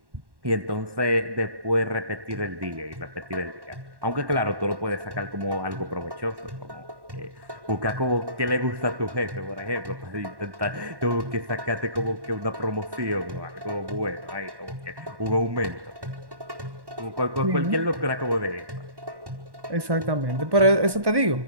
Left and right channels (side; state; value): left; late; 1.1 ms